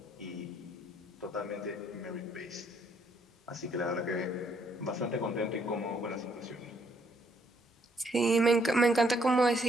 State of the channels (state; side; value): normal; both; correlation 0.69